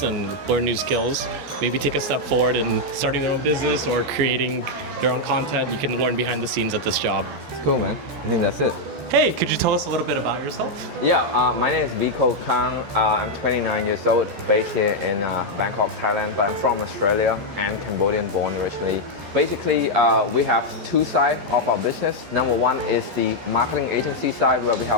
and learn new skills. Maybe take a step forward in starting their own business or creating their own content. You can learn behind the scenes at this job. It's cool, man. I think that's it. Hey, could you tell us a little bit about yourself? Yeah, my name is Vico. I'm 29 years old, based here in Bangkok, Thailand, but I'm from Australia and Cambodian born originally. Basically, we have two sides of our business. Number one is the marketing agency side, where we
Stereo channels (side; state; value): left; late; 14 ms